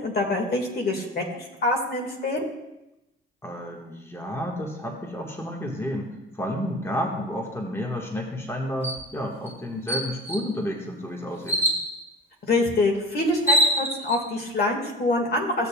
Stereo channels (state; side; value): normal; both; correlation 0.33